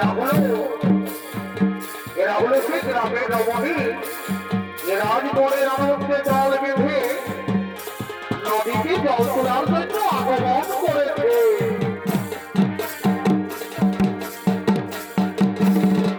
এরা হলো সে গ্রামের রমণী রাজগড়ের আনন্দে জল বেঁধে নদীতে জল তোলার জন্য আগমন করেছে।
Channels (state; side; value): identical; both; correlation 1.00